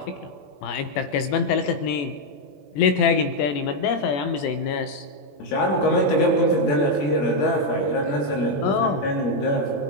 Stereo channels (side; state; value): right; late; 21 ms